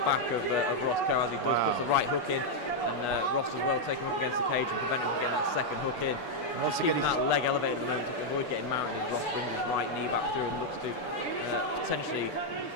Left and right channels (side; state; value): right; late; 6.9 ms